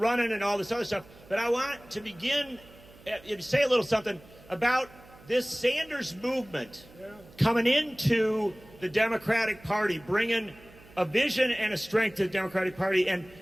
and all this other stuff, but I want to begin, say a little something about this Sanders movement coming into the Democratic Party, bringing a vision and a strength to the Democratic Party. And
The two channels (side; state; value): right; noise; hum, 23 dB below the sound